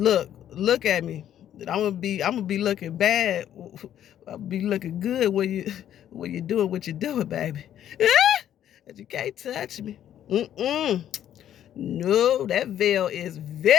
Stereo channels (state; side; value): quieter; right; 10.8 dB